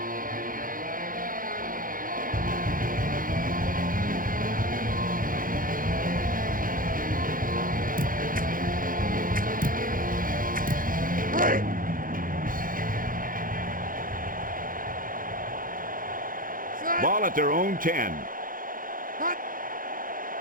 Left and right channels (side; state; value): left; late; 0.40 ms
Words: Ball at their own 10. Hut!